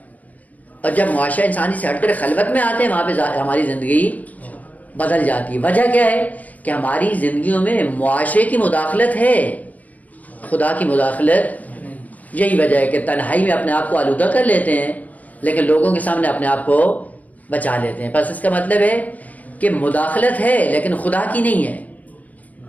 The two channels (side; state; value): right; late; 0.074 ms